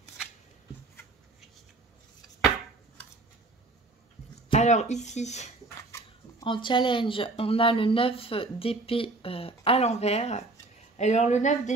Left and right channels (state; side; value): quieter; left; 3.2 dB